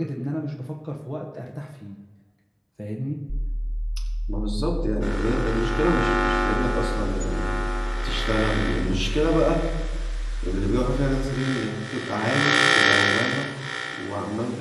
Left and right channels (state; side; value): identical; both; correlation 1.00